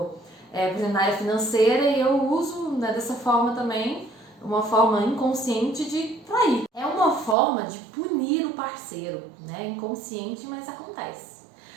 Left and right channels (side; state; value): left; drops out; at 7.4 s